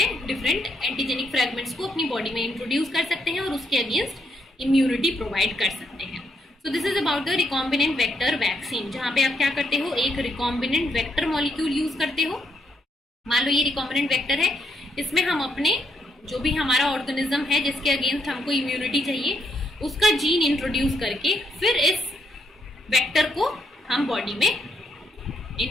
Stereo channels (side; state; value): both; normal; correlation 0.76